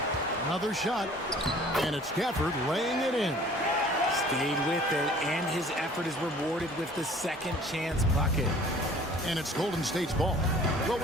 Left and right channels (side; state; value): both; normal; correlation 0.51